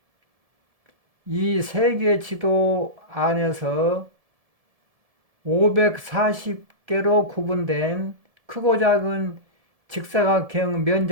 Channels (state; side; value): late; left; 1.7 ms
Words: 이 세계 지도 안에서 540개로 구분된 크고 작은 직사각형